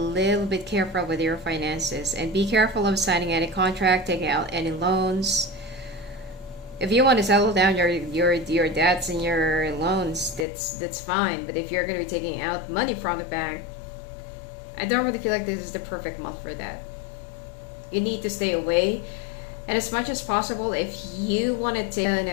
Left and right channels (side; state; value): right; drops out; at 10.5 s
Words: bit careful with your finances, and be careful of signing any contract, taking out any loans. If you want to settle down your debts and your loans, that's fine. But if you're going to be taking out money from the bank, I don't really feel like this is the perfect month for that. You need to stay away. And as much as possible, if you want to take on